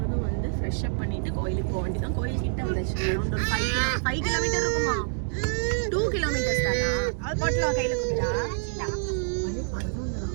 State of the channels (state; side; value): silent; left; digital silence